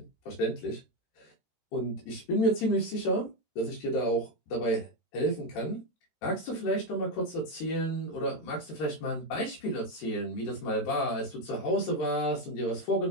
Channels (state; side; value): late; right; 13 ms